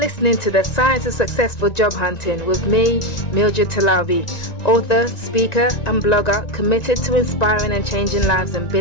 to The Science of Successful Job Hunting with me, Mildred Talabi, author, speaker and blogger committed to inspiring and changing lives in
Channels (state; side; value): late; right; 1.9 ms